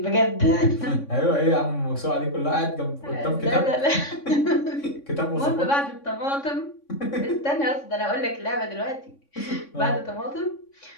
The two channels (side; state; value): right; late; 3.6 ms